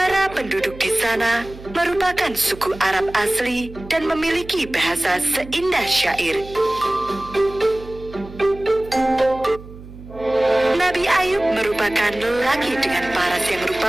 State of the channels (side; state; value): right; noise; hum, 16 dB below the sound